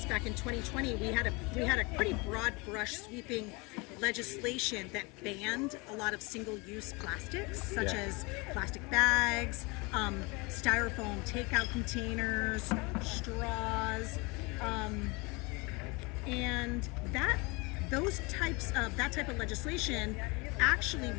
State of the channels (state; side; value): quieter; right; 27.3 dB